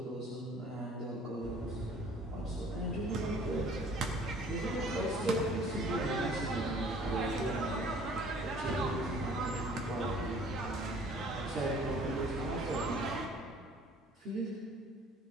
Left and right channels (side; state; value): both; normal; correlation 0.53